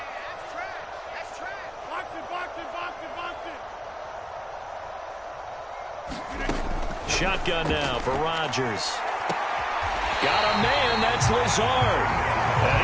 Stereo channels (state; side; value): identical; both; correlation 1.00